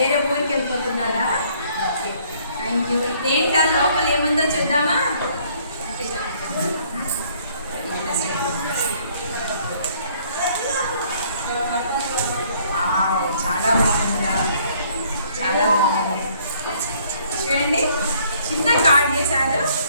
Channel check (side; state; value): both; inverted; correlation -0.62